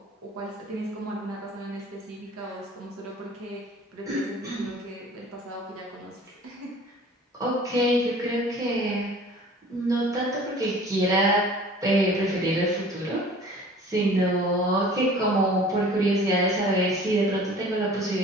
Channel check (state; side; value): normal; both; correlation 0.47